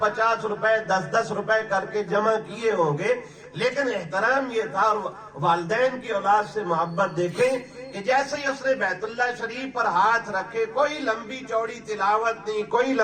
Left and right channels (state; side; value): identical; both; correlation 1.00